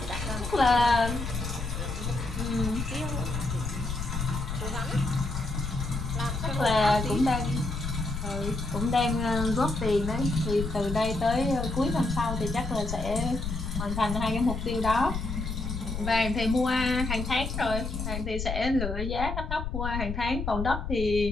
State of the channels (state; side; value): noise; left; rumble, 4 dB below the sound